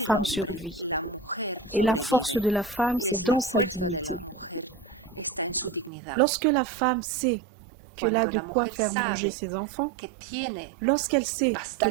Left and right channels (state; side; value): drops out; left; at 5.9 s